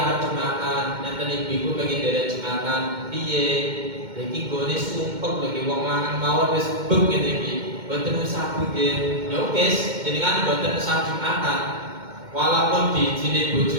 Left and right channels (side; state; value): left; late; 2.1 ms